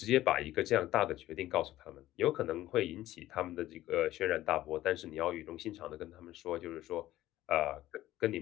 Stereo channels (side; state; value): right; quieter; 15.0 dB